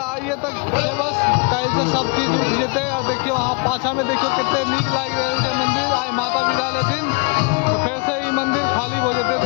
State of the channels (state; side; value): quieter; right; 32.5 dB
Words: आइए तक बस कल से सब चीज उठ जेते। और देखियो वहाँ पाछा में देखियो कितने नीक लाग रहे थे मंदिर आए माता विदा लेथिन तो फिर से ये मंदिर खाली हो जेते।